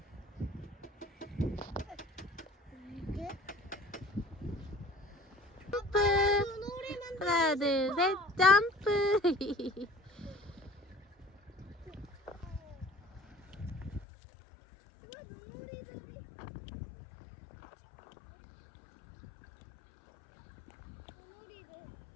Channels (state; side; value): drops out; right; at 14.1 s